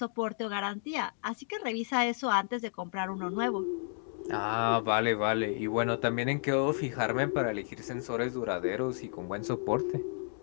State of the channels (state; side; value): silent; right; digital silence